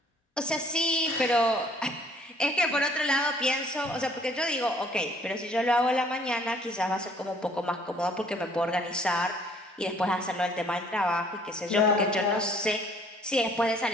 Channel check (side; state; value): both; normal; correlation 0.59